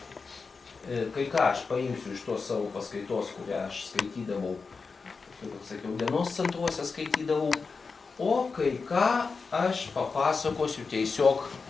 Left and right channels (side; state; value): right; quieter; 4.7 dB